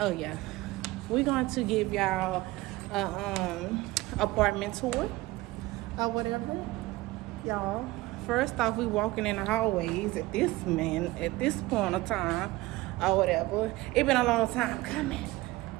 yeah, we're going to give y'all a apartment tour or whatever, y'all. First off, we walking in the hallways at this point of time or whatever. It been a long time coming.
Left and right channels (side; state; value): left; quieter; 19.5 dB